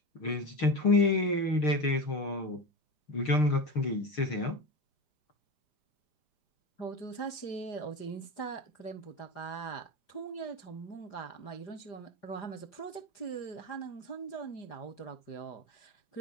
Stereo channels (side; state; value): right; late; 4.9 ms